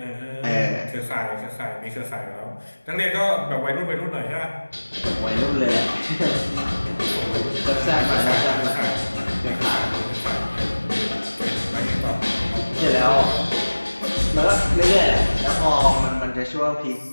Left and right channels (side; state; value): both; inverted; correlation -1.00